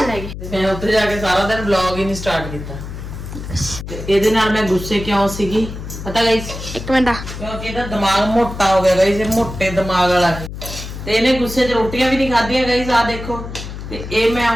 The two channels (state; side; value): noise; left; hum, 9 dB below the sound